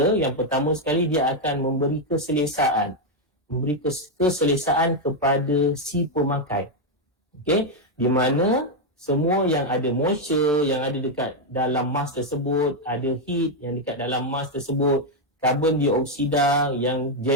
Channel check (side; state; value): both; normal; correlation 0.02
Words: yang pertama sekali dia akan memberi keselesaan. Memberi keselesaan kepada si pemakai. Okay, di mana semua yang ada moisture yang ada dekat dalam mask tersebut, ada heat yang dekat dalam mask tersebut, karbon dioksida yang